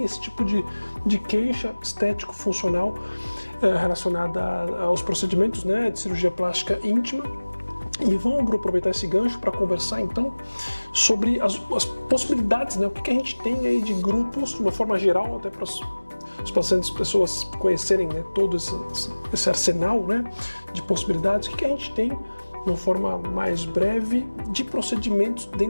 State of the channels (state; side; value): inverted; both; correlation -1.00